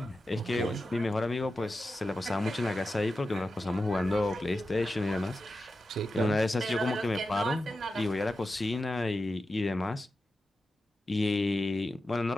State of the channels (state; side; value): normal; both; correlation 0.91